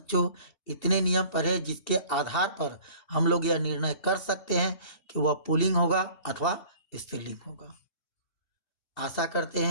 इतने नियम पढ़े जिसके आधार पर हम लोग यह निर्णय कर सकते हैं कि वह पुल्लिंग होगा अथवा स्त्रीलिंग होगा। आशा करते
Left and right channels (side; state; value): right; late; 2.7 ms